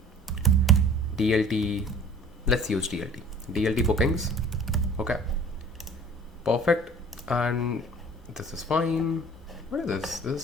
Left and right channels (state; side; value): normal; both; correlation 0.48